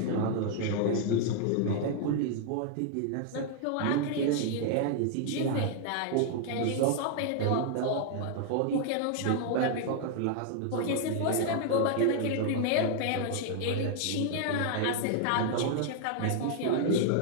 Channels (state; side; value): different; both; correlation 0.00